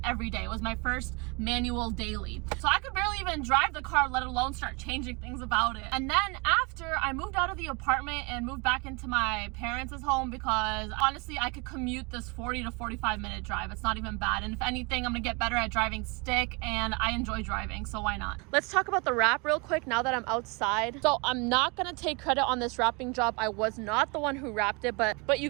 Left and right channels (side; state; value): left; quieter; 29.7 dB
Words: every day. It was my first manual daily. So I could barely even drive the car, let alone start changing things about it. And then after I moved out of the apartment and moved back into my parents' home, because honestly I could commute this 40 to 45 minute drive. It's not even bad, and if anything, I'm gonna get better at driving stick, and I enjoy driving, so why not? Let's talk about the wrap real quick now that I'm outside. So I'm not gonna take credit on this wrapping job. I was not the one who wrapped it, but you